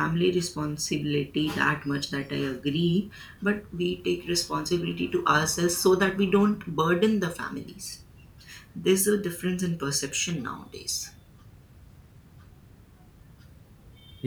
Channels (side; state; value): both; identical; correlation 1.00